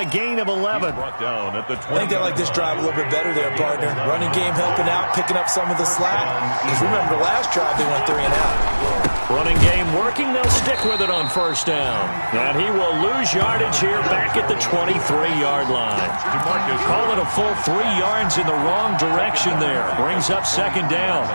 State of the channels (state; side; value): inverted; both; correlation -1.00